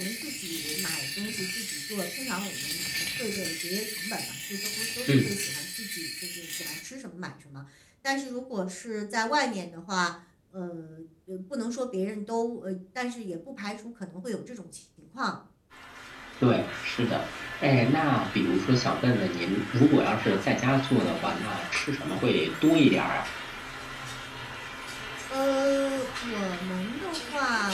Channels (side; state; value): both; identical; correlation 1.00